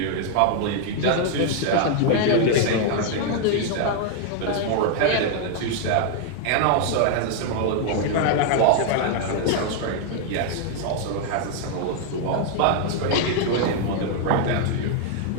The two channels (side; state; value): both; different; correlation 0.00